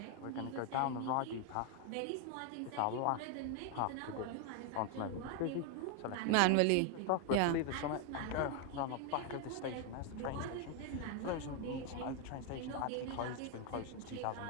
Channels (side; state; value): both; different; correlation 0.01